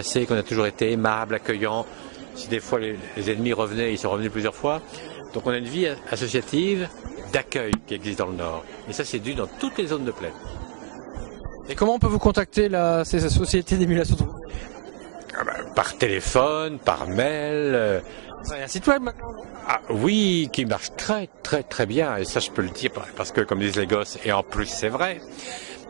qu'on a toujours été aimables, accueillants. Si des fois les ennemis revenaient, ils sont revenus plusieurs fois. Donc on a une vie associative d'accueil qui existe dans le Nord. Et ça c'est dû dans toutes les zones de plaine. Et comment on peut vous contacter ces sociétés d'émulation de Roubaix? Par téléphone, par mail. Il y a un site web maintenant? Ah, oui, qui marche très très très bien, et ça je peux le dire parce que comme disent les gosses, et en plus c'est vrai,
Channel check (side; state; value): left; silent; digital silence